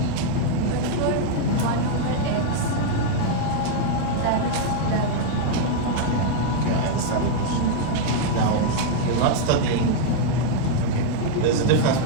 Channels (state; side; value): different; both; correlation -0.01